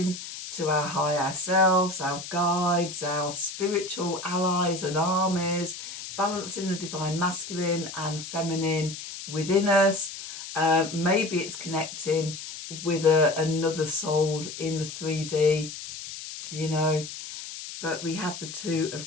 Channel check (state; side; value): noise; left; hiss, 10 dB below the sound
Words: to our higher selves, our guides, our spiritual allies and armies, balancing the divine masculine and feminine within us. Maybe it's connecting with another soul in the 3D, you know, but we have the Two